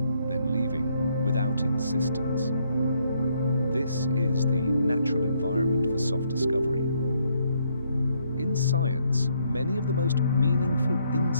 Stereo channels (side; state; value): both; inverted; correlation -0.72